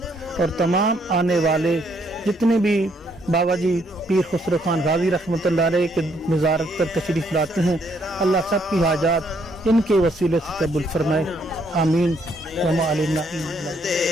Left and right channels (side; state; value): both; normal; correlation 0.70